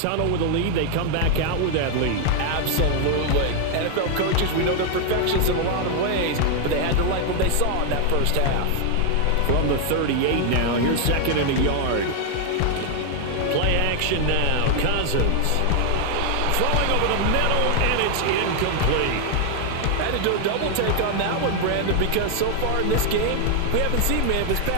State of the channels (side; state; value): both; different; correlation 0.00